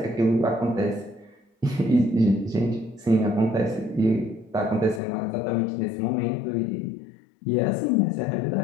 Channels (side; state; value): right; drops out; at 5.0 s